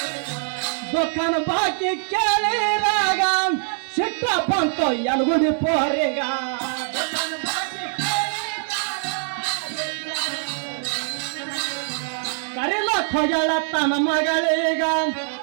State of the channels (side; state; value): left; silent; digital silence